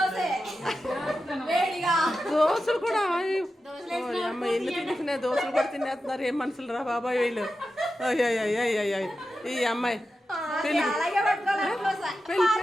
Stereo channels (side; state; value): both; normal; correlation 0.91